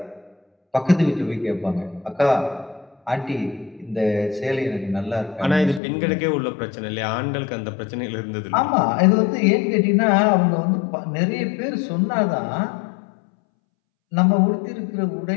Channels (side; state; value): right; drops out; at 5.8 s